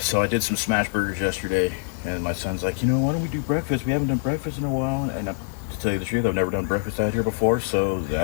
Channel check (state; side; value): silent; right; 56 dB below the other